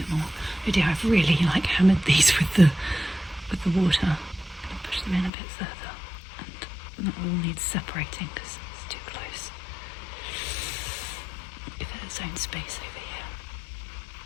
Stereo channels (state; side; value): drops out; right; at 5.3 s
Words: more. Oh dear, I've really hammered these with the water. I'm going to push them in a bit further, and that all needs separating because it's too close. Give it its own space over here.